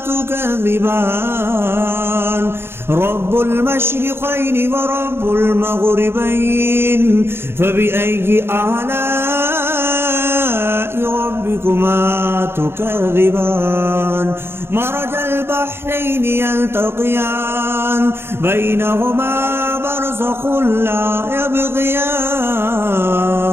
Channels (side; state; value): left; late; 0.11 ms